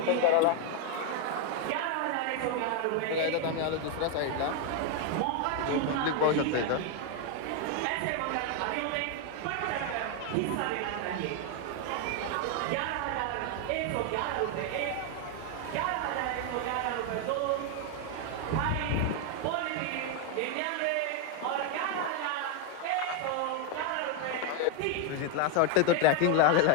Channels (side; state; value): both; different; correlation 0.01